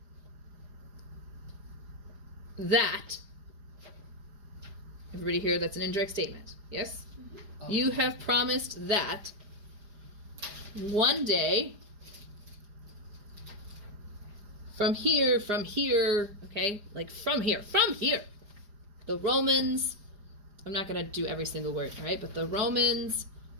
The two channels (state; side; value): late; left; 4.9 ms